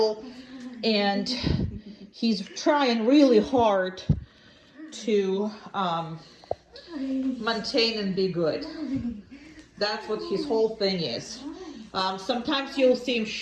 and he's trying really hard to maintain and be good. That's what his whole thing is. Sometimes you'll see him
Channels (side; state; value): both; identical; correlation 1.00